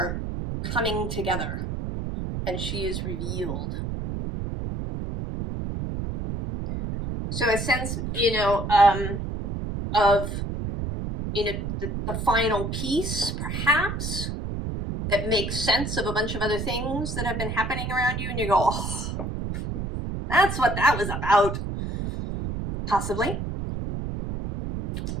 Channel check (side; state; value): right; noise; rumble, 4 dB below the sound